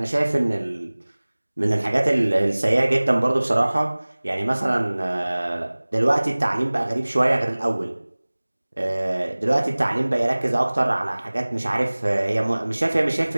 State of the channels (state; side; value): inverted; both; correlation -1.00